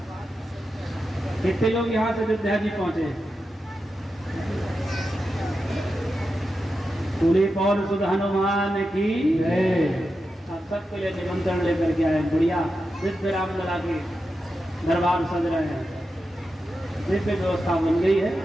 कितने लोग यहाँ से अयोध्या जी पहुंचे। पूरी पौर सुध हनुमान की आप सबके लिए निमंत्रण लेकर के आए। बढ़िया दिव्य रामलला के दरबार सज रहे हैं, दिव्य व्यवस्था बन गई है।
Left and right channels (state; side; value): normal; both; correlation 0.89